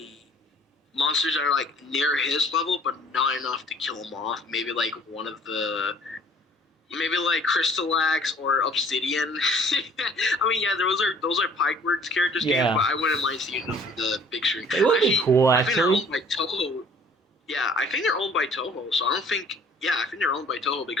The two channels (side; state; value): both; normal; correlation 0.55